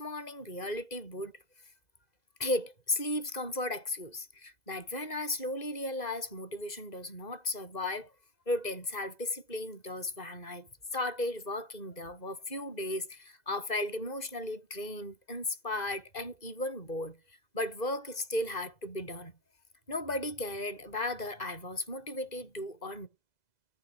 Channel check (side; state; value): right; late; 2.0 ms